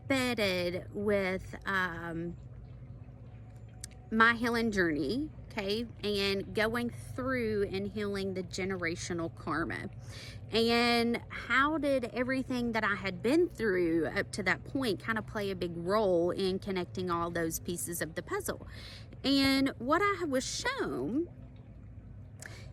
with my healing journey, okay, and going through and healing the generational karma. And how did everything that I had been through up to that point kind of play a big role in connecting all those pieces of the puzzle? And what I was shown,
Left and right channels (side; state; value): both; identical; correlation 1.00